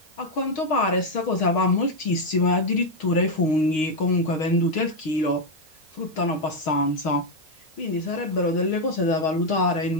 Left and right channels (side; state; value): right; late; 6.4 ms